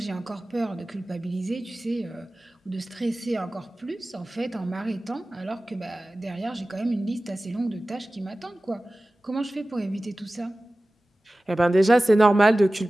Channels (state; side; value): normal; both; correlation 0.97